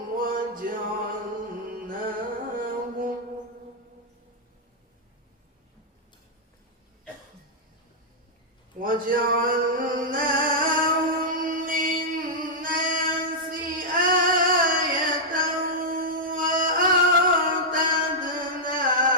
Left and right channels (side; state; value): both; normal; correlation -0.07